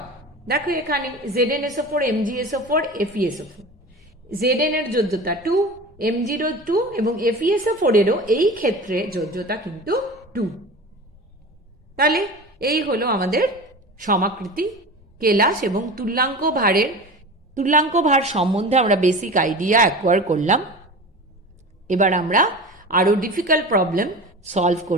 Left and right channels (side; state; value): both; normal; correlation 0.33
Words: দেখো এখানে ZnSO4, MgSO4, FeSO4, Zn এর যোজ্যতা 2, Mg 2 এবং FeSO4 এরও এই ক্ষেত্রে যোজ্যতা কিন্তু 2। তাহলে এই হলো আমাদের সমাকৃতি, কেলাস এবং তুল্যাঙ্ক ভার সম্বন্ধে আমরা বেসিক আইডিয়া অ্যাকোয়ার করলাম। এবার আমরা আরও ডিফিকাল্ট প্রবলেম সলভ